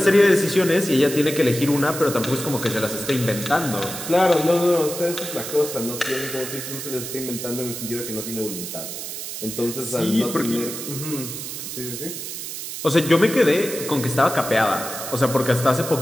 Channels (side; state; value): right; noise; hiss, 7 dB below the sound